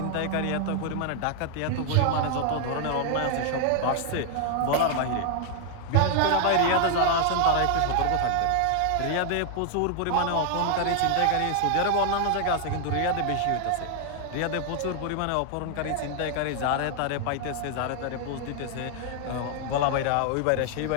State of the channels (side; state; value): both; different; correlation 0.00